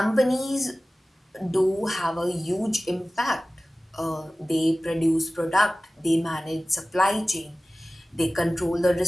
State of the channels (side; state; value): both; normal; correlation 0.96